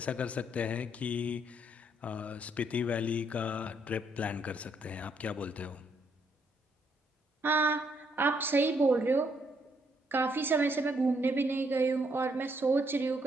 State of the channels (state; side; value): normal; both; correlation 0.72